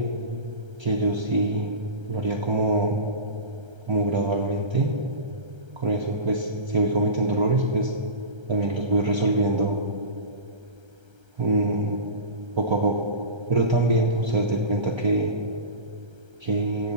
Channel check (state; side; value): late; left; 1.3 ms